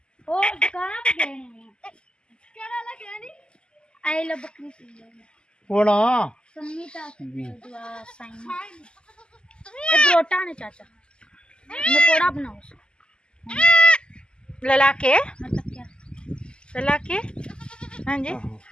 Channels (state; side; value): late; right; 0.050 ms